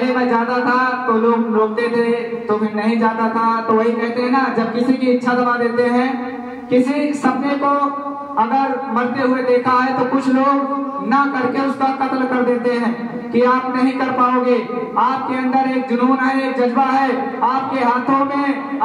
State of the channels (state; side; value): identical; both; correlation 1.00